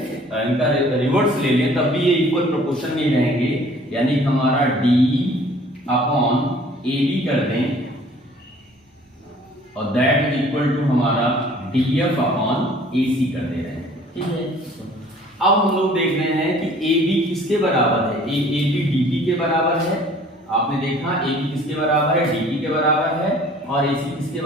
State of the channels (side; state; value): both; normal; correlation 0.53